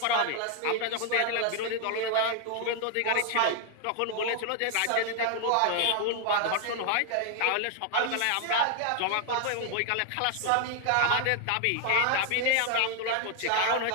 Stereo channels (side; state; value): both; different; correlation 0.00